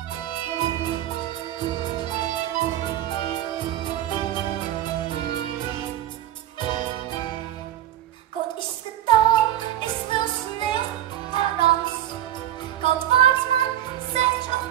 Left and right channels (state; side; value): quieter; left; 12.5 dB